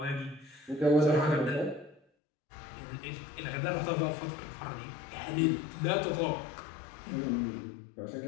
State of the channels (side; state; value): right; drops out; at 2.0 s